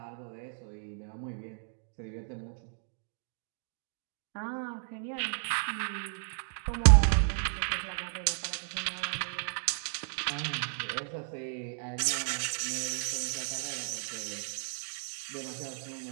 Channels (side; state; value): left; silent; digital silence